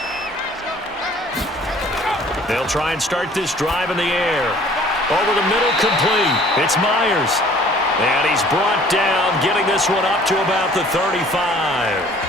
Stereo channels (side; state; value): both; normal; correlation 0.53